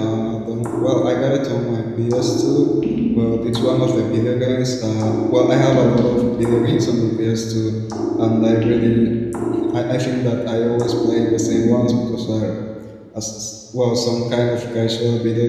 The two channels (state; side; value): identical; both; correlation 1.00